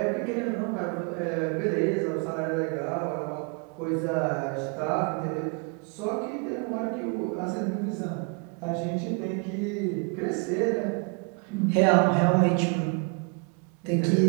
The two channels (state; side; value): quieter; left; 36.2 dB